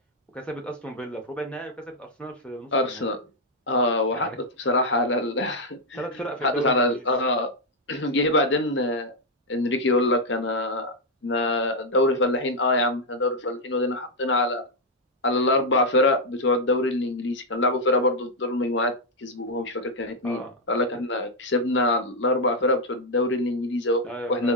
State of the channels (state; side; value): normal; both; correlation -0.01